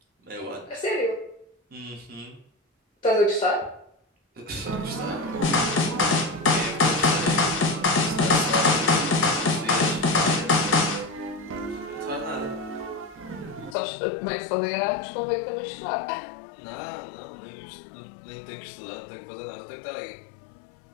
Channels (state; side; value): drops out; right; at 13.8 s